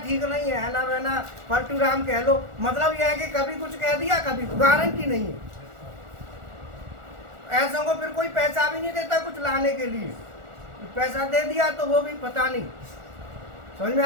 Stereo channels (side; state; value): left; late; 1.4 ms